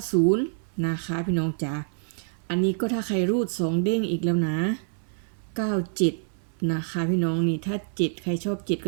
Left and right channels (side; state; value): left; silent; 58 dB below the other